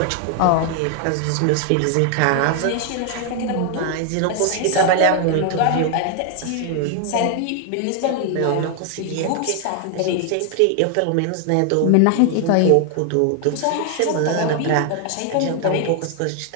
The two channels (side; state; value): both; different; correlation 0.00